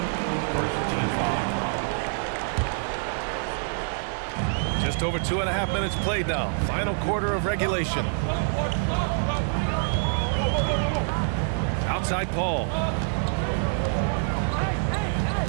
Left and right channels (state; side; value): silent; left; 61 dB below the other